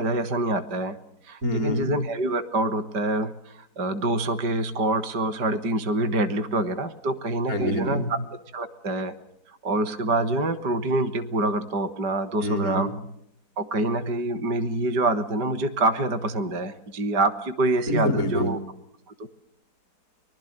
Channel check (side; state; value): left; late; 5.0 ms